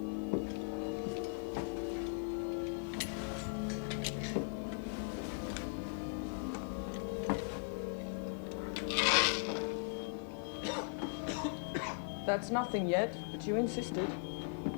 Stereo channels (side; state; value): right; silent; digital silence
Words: That's nothing yet, but you insisted.